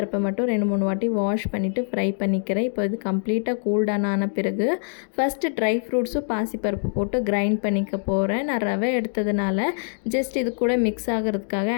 மட்டும் 2, 3 வாட்டி வாஷ் பண்ணிவிட்டு ஃப்ரை பண்ணிக்கிறேன். இப்போ இது கம்ப்ளீட்டாக கூல் டவுன் ஆன பிறகு ஃபஸ்ட்டு ட்ரை ஃப்ரூட்ஸும் பாசிப்பருப்பு போட்டு கிரைண்ட் பண்ணிக்க போகிறேன். நான் ரவை எடுத்ததுனால ஜஸ்ட் இது கூட மிக்ஸ் ஆகிறதுக்காக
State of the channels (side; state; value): right; silent; 55 dB below the other